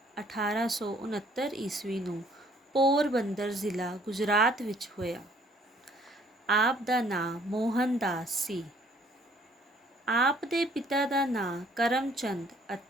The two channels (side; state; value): both; normal; correlation 0.61